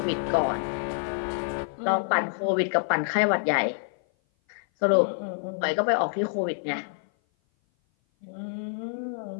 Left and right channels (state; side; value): silent; right; 56 dB below the other